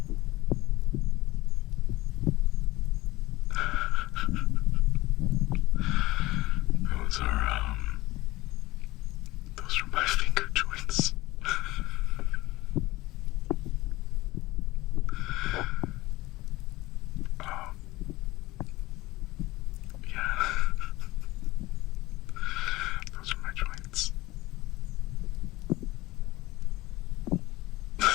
Those are my finger joints. Yeah. Those are my joints.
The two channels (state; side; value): quieter; right; 19.0 dB